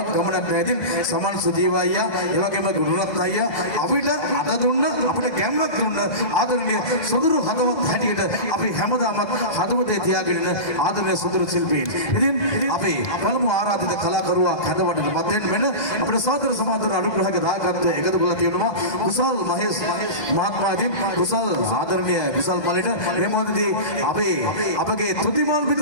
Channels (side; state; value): right; late; 2.0 ms